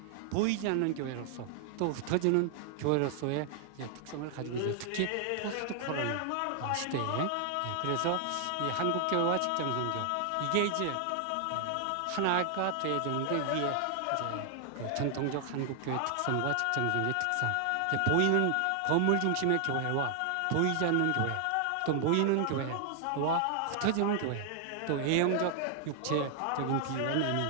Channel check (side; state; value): both; different; correlation 0.00